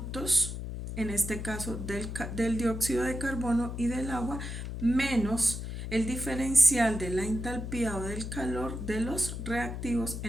en este caso del dióxido de carbono y del agua, menos el diferencial de la entalpía o del calor de los reactivos,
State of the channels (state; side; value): noise; left; hum, 6 dB below the sound